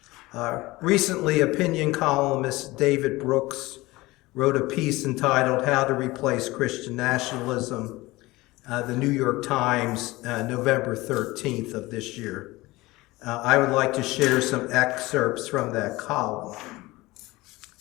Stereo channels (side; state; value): right; quieter; 20.3 dB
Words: recently opinion columnist David Brooks wrote a piece entitled How to Replace Christian Nationalism, the New York Times, November 13th of this year. I would like to share some excerpts from that column.